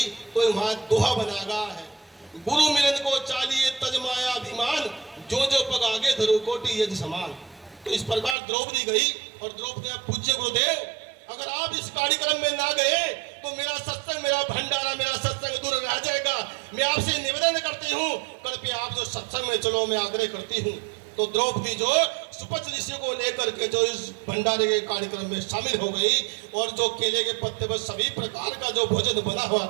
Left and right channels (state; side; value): drops out; left; at 8.3 s